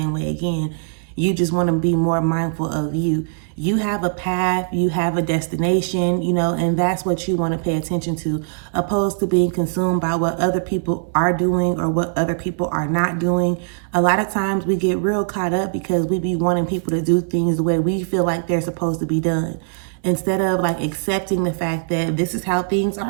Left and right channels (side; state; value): left; silent; digital silence